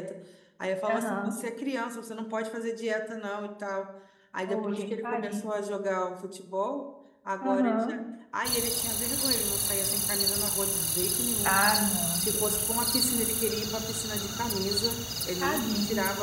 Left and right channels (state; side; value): identical; both; correlation 1.00